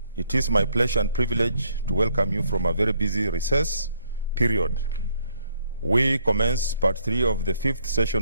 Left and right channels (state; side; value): inverted; both; correlation -0.67